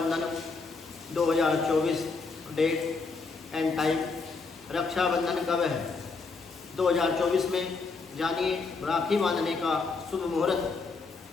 2024 date and time. Rakshabandhan कब है 2024 में? जानिए राखी बांधने का शुभ मुहूर्त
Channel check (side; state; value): right; quieter; 4.3 dB